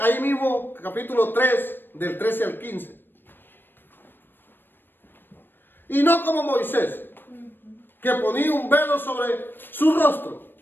mismo, capítulo 3, del 13 al 15. Y no como Moisés, que ponía un velo sobre su rostro,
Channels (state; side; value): late; right; 0.096 ms